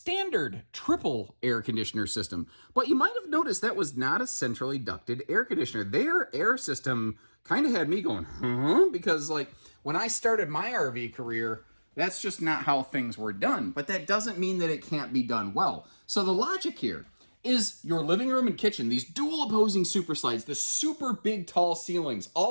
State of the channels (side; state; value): both; inverted; correlation -1.00